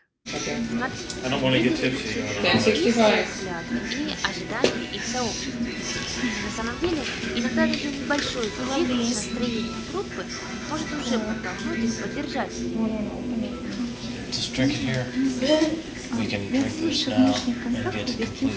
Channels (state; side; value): identical; both; correlation 1.00